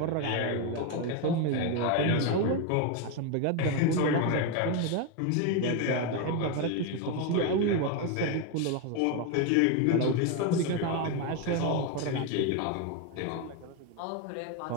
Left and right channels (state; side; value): different; both; correlation 0.02